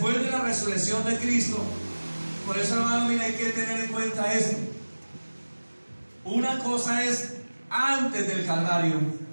de la resurrección de Cristo, por eso, hermano, mira, hay que tener en cuenta esto. Una cosa es antes del Calvario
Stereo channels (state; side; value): inverted; both; correlation -1.00